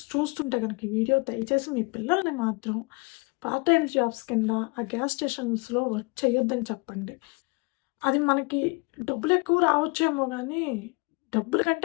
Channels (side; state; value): right; quieter; 28.1 dB